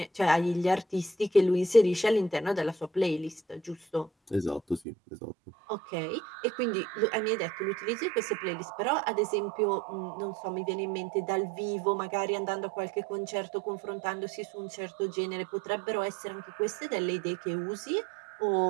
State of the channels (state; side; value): drops out; left; at 4.8 s